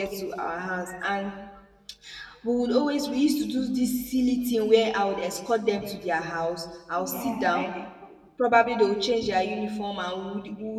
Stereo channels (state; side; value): identical; both; correlation 1.00